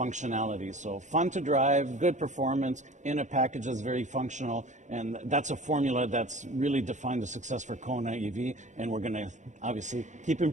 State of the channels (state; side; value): late; left; 0.35 ms